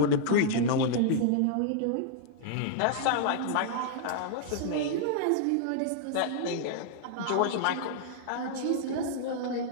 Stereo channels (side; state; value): both; different; correlation -0.01